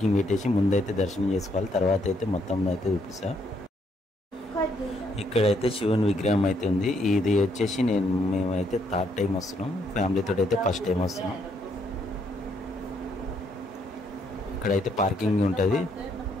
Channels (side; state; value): both; normal; correlation 0.72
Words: పెట్టేసి ముందైతే దర్శనం చేసుకోవాలి. తర్వాత అయితే మొత్తం అయితే చూపిస్తా. ఇక్కడైతే శివుని విగ్రహం అయితే ఉంది. ఇది వచ్చేసి మేమైతే 3rd టైం వస్తున్నాం. ఫ్యామిలీతో అయితే ఫస్ట్ టైం వస్తున్నాం. ఇక్కడైతే పార్కింగ్ ఉంటుంది.